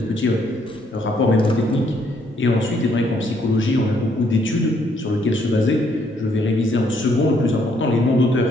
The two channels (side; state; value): both; normal; correlation 0.69